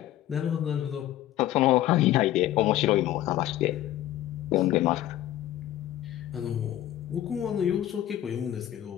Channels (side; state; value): right; quieter; 13.4 dB